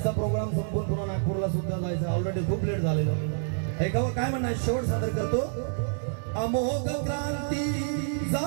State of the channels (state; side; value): silent; left; digital silence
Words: प्रोग्राम संपून पुन्हा नागपूरला सुद्धा जायचं. ऑलरेडी खूप लेट झालेलं. ऐकावं काय म्हणणार, शेवट सादर करतो. अमोघ क्रांती